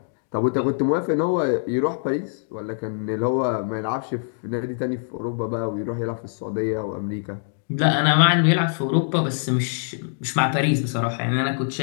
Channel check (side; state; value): right; silent; digital silence